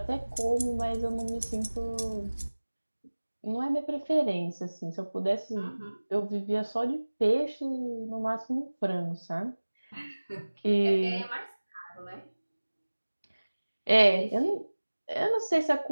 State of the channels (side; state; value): both; inverted; correlation -1.00